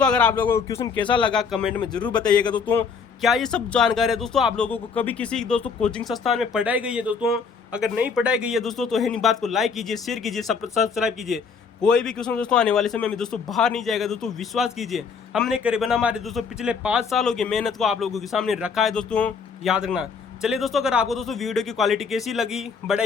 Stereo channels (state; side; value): quieter; right; 5.7 dB